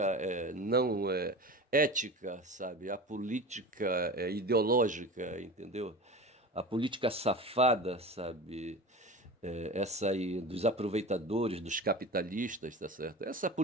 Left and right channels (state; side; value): normal; both; correlation 0.32